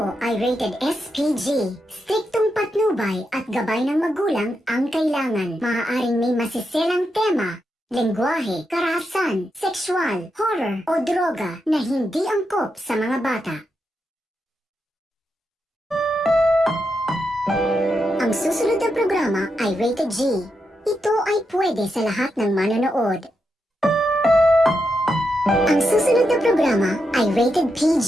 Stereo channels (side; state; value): both; normal; correlation 0.85